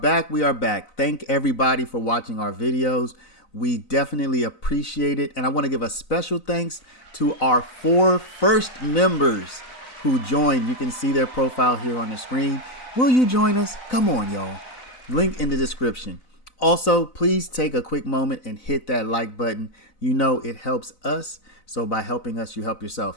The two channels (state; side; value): late; right; 4.0 ms